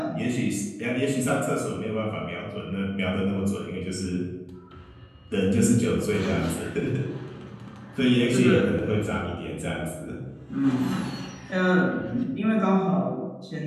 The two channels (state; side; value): identical; both; correlation 1.00